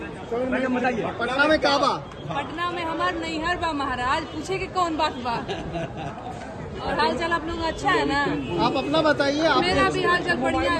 पटना में काबा, पटना में हमार नैहर बा महाराज, पूछे कि कौन बात बा। और हाल चाल आप लोग अच्छा है ना? आप अपना बताइए। मेरा भी हाल चाल बढ़िया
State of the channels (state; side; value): identical; both; correlation 1.00